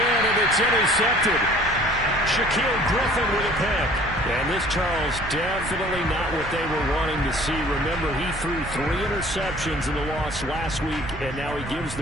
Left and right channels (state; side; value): noise; right; rumble, 11 dB below the sound